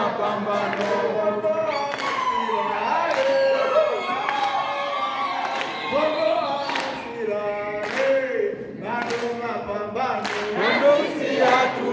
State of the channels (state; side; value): identical; both; correlation 1.00